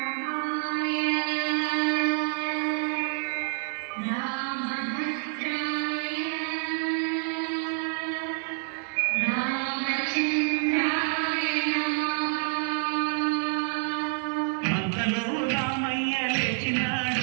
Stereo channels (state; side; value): silent; left; 58 dB below the other